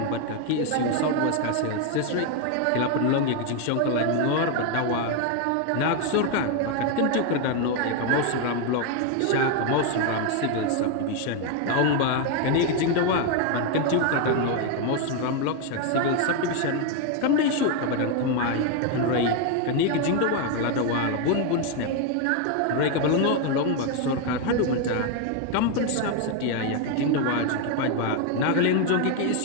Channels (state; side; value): different; both; correlation 0.01